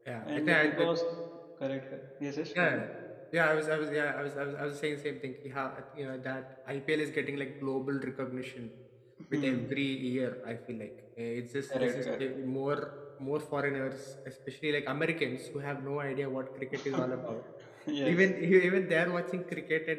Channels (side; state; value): both; identical; correlation 1.00